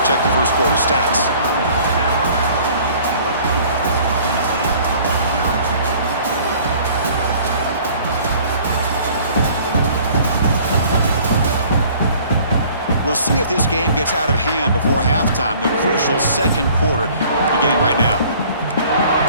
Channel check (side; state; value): both; inverted; correlation -0.52